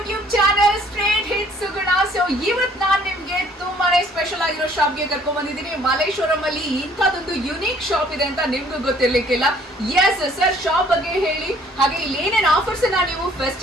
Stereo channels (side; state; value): both; normal; correlation 0.59